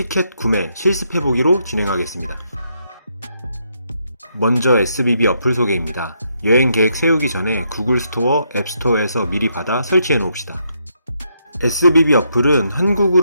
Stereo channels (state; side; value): inverted; both; correlation -0.76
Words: 구매, 실습해보기로 진행하겠습니다. 먼저 SBB 어플 소개입니다. 여행 계획 세우기 전에 구글 스토어, 앱 스토어에서 미리 받아 설치해 놓읍시다. SBB 어플은